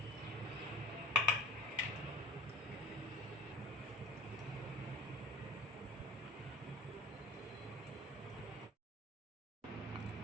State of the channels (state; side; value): normal; both; correlation 0.39